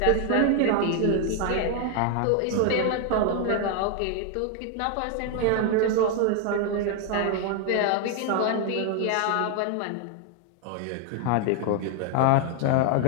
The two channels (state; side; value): different; both; correlation 0.01